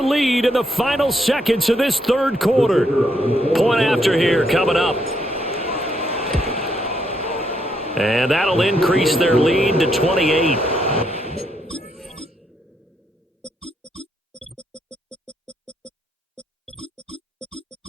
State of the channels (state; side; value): normal; both; correlation 0.76